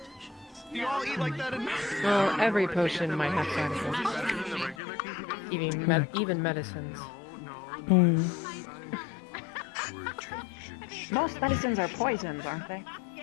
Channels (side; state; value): right; drops out; at 4.8 s